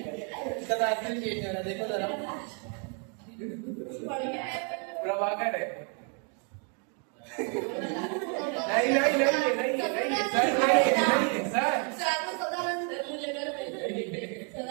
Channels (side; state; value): left; quieter; 39.3 dB